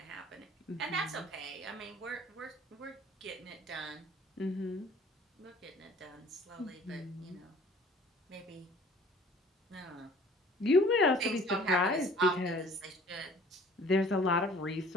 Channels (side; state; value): both; normal; correlation 0.51